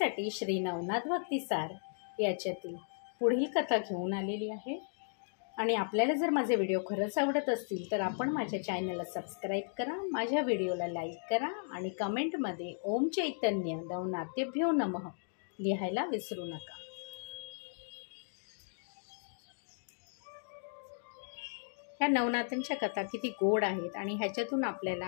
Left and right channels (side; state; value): right; silent; digital silence